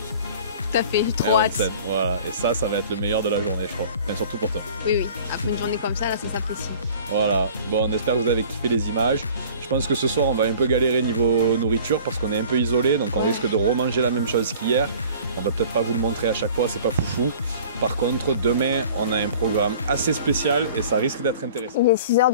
Tout à fait, trop hâte. Voilà, et ça va être le meilleur de la journée, je crois. Mais surtout pour toi. Oui, après une journée comme ça, là, ça s'apprécie. Voilà, bon, on espère que vous avez kiffé les images. Je pense que ce soir, on va un peu galérer niveau nourriture parce qu'on est un peu isolé, donc on risque de remanger la même chose qu'hier. On va peut-être pas vous le montrer à chaque fois, c'est pas foufou. Par contre, demain, on a un programme assez spécial et ça risque d'être intéressant. Il est 6 h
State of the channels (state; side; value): inverted; both; correlation -0.47